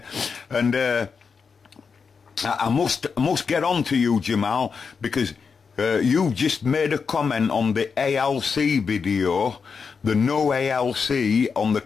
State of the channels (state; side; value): quieter; right; 5.6 dB